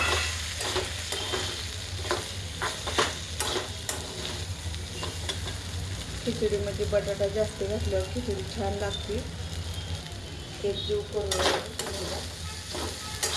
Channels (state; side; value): noise; right; rumble, 22 dB below the sound